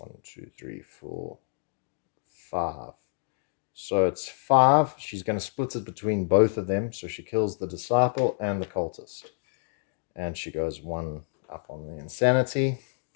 2, 3, 4, 5. So it's 5. She's going to split it between both of them. So she kills the disciple and the cultist. And she goes 1 up on the insanity.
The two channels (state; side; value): silent; right; digital silence